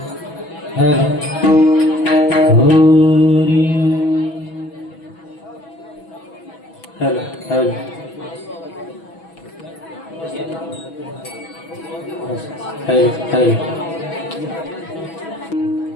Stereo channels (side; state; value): right; late; 6.1 ms